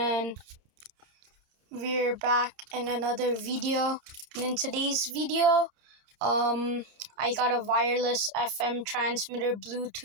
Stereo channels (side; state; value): left; late; 29 ms